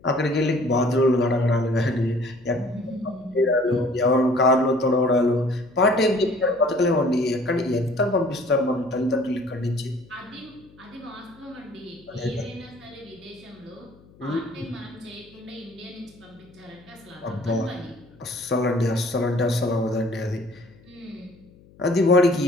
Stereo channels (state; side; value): noise; left; hum, 26 dB below the sound